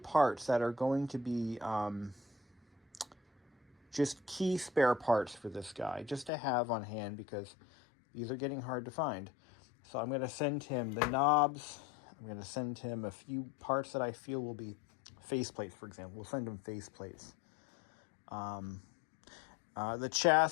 that are going to be just key spare parts for this guy, just to have on hand because these are getting hard to find. So I'm going to send him the knobs. I'm going to send him a few parts that I feel will be faceplates, for example. We'll send him faceplates. The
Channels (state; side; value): drops out; right; at 6.3 s